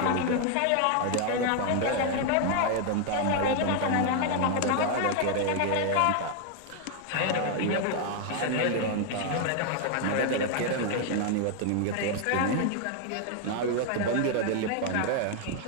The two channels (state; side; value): different; both; correlation 0.00